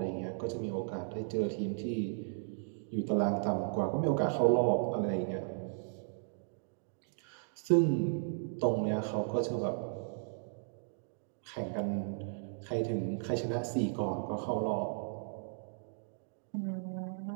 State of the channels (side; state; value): left; silent; digital silence